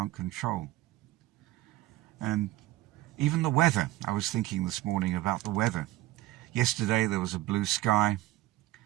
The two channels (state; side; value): quieter; left; 16.4 dB